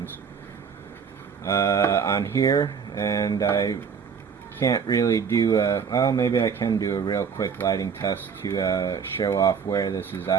on here. And I can't really do well, maybe I can do a real quick lighting test to show off where this is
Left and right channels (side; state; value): left; quieter; 6.5 dB